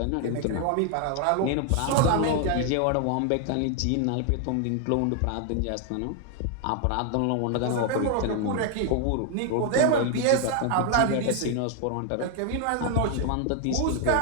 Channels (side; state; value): both; different; correlation 0.00